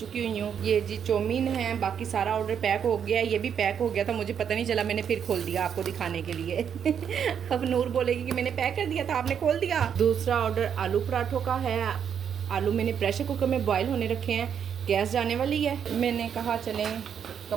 हुई हूँ। ये जी चौमीन है, बाकी सारा ऑर्डर पैक हो गया। ये भी पैक हो गया था, मुझे पता नहीं चला, मैंने फिर खोल दिया आपको दिखाने के लिए। अब नूर बोलेगी कि मैंने पैक कर दिया था, आपने खोल दिया। दूसरा ऑर्डर आलू पराठों का है। आलू मैंने प्रेशर कुकर में बॉयल होने रखे हैं, गैस जाने वाली है। मैंने कहा चलें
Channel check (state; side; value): quieter; left; 8.0 dB